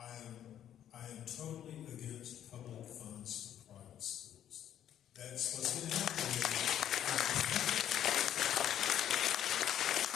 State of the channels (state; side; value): quieter; right; 10.6 dB